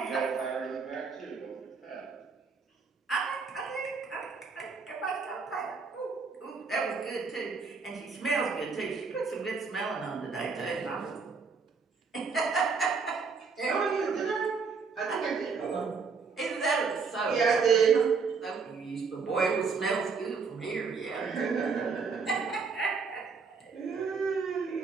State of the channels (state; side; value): quieter; left; 5.0 dB